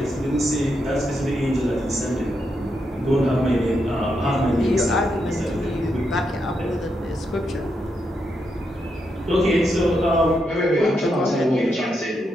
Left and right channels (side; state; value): both; normal; correlation 0.82